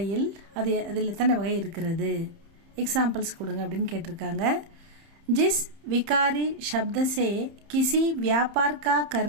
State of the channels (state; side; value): late; left; 30 ms